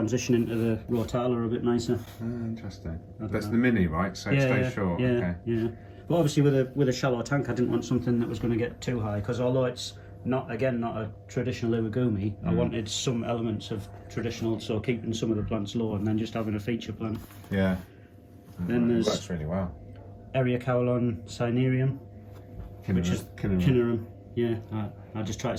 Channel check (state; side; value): identical; both; correlation 1.00